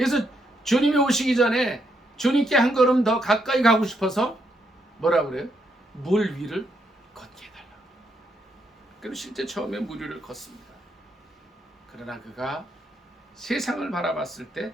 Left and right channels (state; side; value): normal; both; correlation 0.77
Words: 주님이 오시기 전에 주님께 한 걸음 더 가까이 가고 싶어서 뭐라고 그래요? 물 위를 걷게 해달라고. 그리고 실제 처음에 물 위를 걷습니다. 그러나 그가 세상을 바라봤을 때,